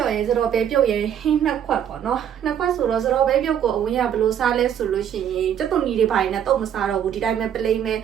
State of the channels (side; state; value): left; quieter; 9.3 dB